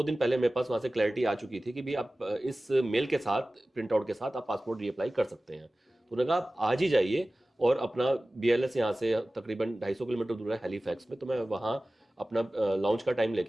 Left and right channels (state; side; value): normal; both; correlation 0.97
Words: दिन पहले मेरे पास वहाँ से क्लैरिटी आ चुकी थी कि भी आप इस मेल के साथ, प्रिंट आउट के साथ आप पासपोर्ट रीअप्लाई कर सकते हैं। तो उन्होंने कहा आप आज ही जाइए, और अपना बीएलएस यहाँ से तकरीबन 250 किलोमीटर दूर है हैलीफैक्स में। तो मैं वहाँ अपना लॉन्च का टाइम